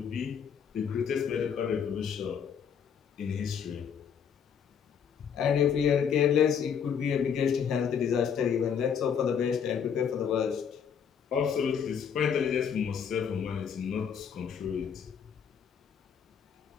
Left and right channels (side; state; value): right; quieter; 7.5 dB